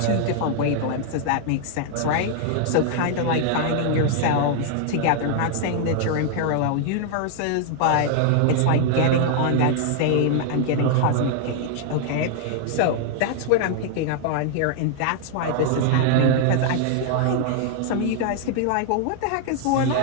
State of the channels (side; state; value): both; different; correlation 0.00